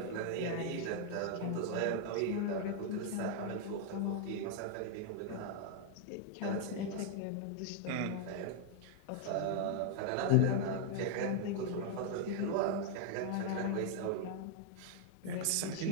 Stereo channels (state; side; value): different; both; correlation 0.00